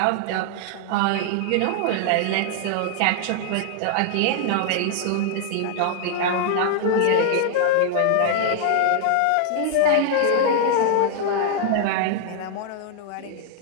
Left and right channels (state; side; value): different; both; correlation 0.00